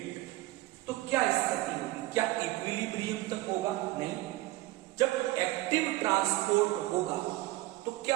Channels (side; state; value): left; quieter; 18.3 dB